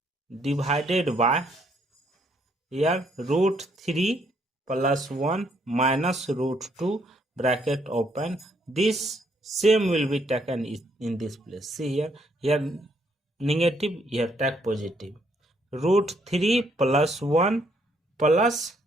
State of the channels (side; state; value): both; normal; correlation 0.70